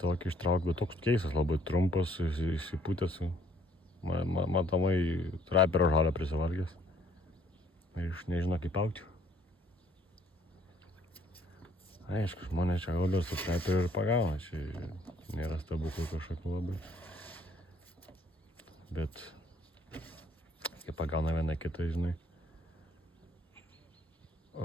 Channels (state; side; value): normal; both; correlation 0.62